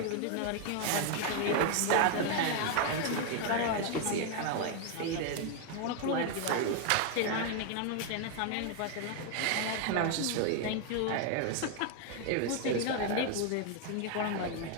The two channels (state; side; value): different; both; correlation 0.01